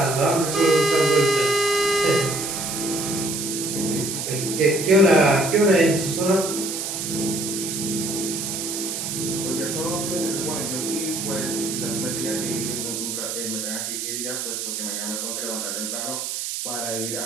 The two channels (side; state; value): right; noise; hiss, 4 dB below the sound